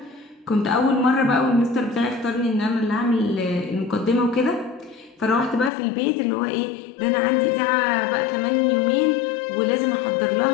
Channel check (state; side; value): drops out; right; at 5.7 s